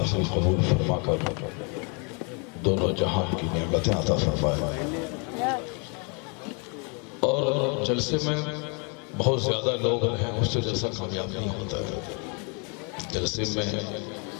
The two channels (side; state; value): right; quieter; 35.4 dB